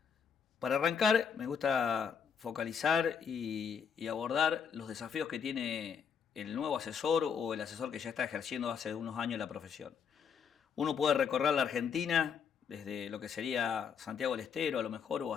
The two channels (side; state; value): right; quieter; 6.9 dB